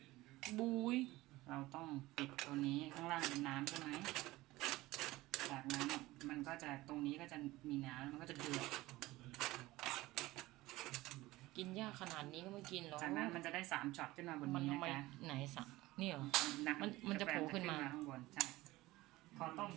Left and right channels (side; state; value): left; quieter; 18.6 dB